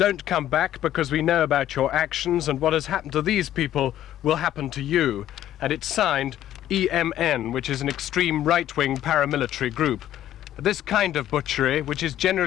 come back because we know about your actions, and what has happened to these people will happen to you." And it's signed EMN, which is an extreme right-wing paramilitary group. This kind of butchery, which is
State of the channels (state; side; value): quieter; right; 12.3 dB